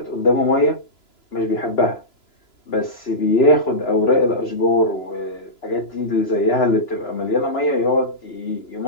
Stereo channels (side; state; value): right; late; 2.9 ms